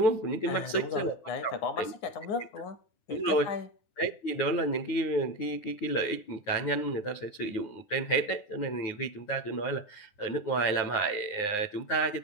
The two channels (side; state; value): right; late; 9.6 ms